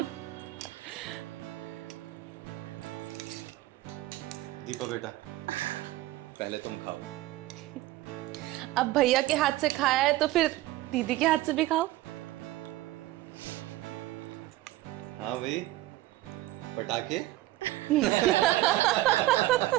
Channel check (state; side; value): quieter; left; 16.7 dB